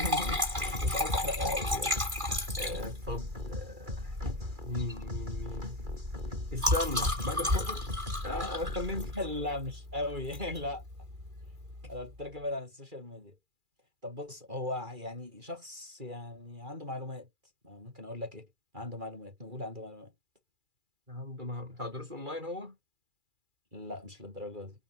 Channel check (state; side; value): late; left; 2.4 ms